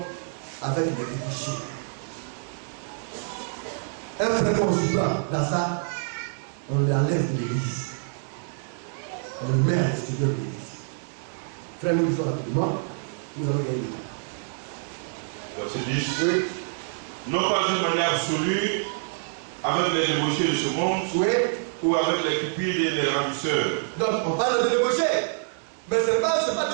avec les débauchés. Un frère qu'on se prend dans ça, on l'enlève de l'église. On le met à l'extérieur de l'église. Frère, nous disons rapidement, nous allons gagner le temps. Verset 10. Oui. Non pas d'une manière absolue, avec les débauchés de ce monde, Oui. ou avec les cupides et les ravisseurs. Donc, on parle de débauchés. Mais ce n'est pas de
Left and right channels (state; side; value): silent; left; digital silence